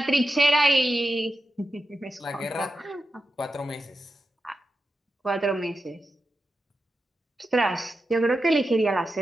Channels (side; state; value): both; normal; correlation 0.90